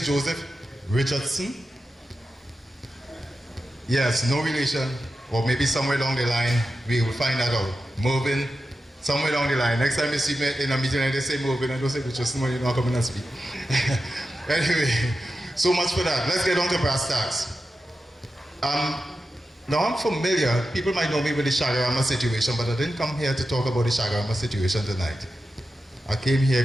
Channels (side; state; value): both; normal; correlation 0.91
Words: Joseph Richardson. Yes, no relation, or maybe somewhere along the line, we will find that out. Mervyn, somewhere along the line. Next time you see me in a meeting and they say Mervyn, I don't say Richardson, you're not coming and speak. Anyway, so much for that. Let's get on to brass tacks. Now I'm familiar, people might know me with the Shagarama situation, but I didn't come here to talk about the Shagarama situation tonight. I came here